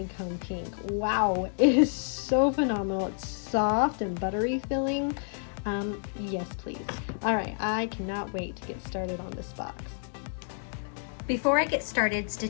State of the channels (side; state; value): right; silent; digital silence